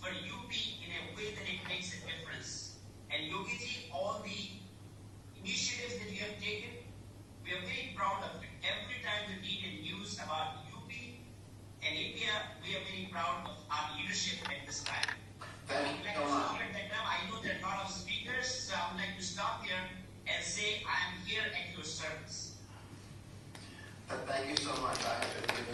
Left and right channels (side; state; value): both; identical; correlation 1.00